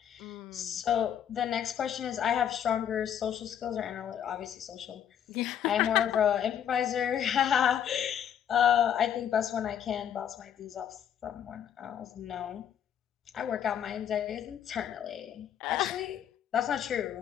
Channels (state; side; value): quieter; right; 9.3 dB